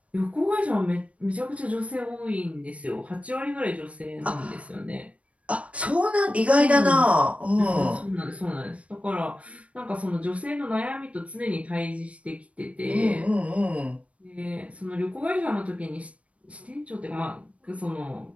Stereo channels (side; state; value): left; late; 0.064 ms